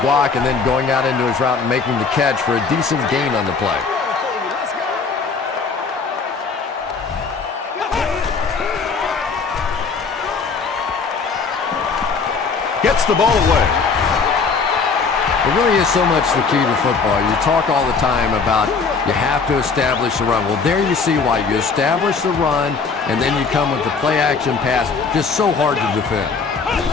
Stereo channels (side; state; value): right; quieter; 5.0 dB